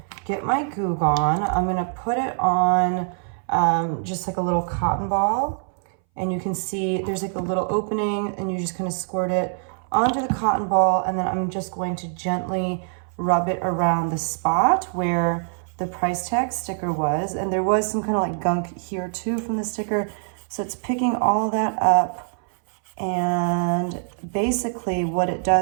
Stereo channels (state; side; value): silent; left; 61 dB below the other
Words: get my Goo Gone. I'm going to put it on just like a little cotton ball. And you can see there's like a little opening, and you just kind of squirt it onto the cotton ball, and then I'm just going to gently rub it around the spot where the price tag sticker was. And there was some kind of like gunk here too from the sticker. So it's picking all that up. And basically what it